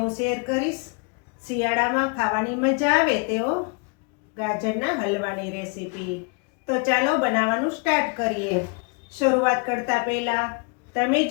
હું શેર કરીશ શિયાળામાં ખાવાની મજા આવે તેવો ગાજરના હલવાની રેસીપી. તો ચાલો બનાવવાનું સ્ટાર્ટ કરીએ. શરૂઆત કરતા પહેલા તમે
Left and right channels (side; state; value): right; quieter; 33.4 dB